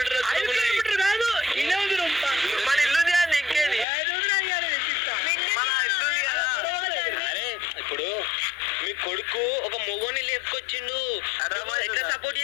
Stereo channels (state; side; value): drops out; right; at 3.9 s